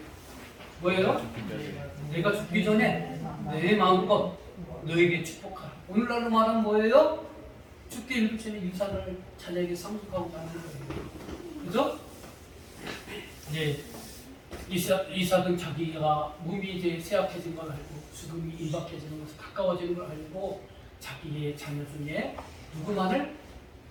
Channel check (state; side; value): identical; both; correlation 1.00